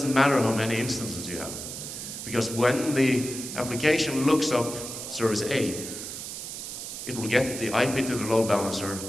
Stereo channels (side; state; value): right; noise; hiss, 8 dB below the sound